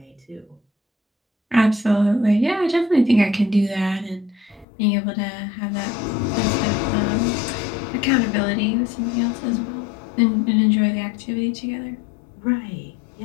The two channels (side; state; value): right; drops out; at 4.7 s